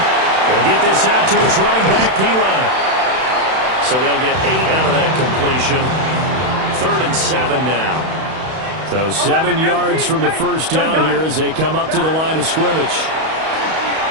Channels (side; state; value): left; late; 31 ms